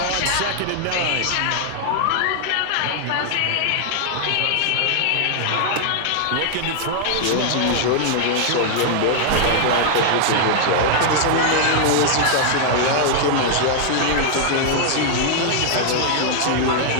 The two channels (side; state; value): both; different; correlation -0.01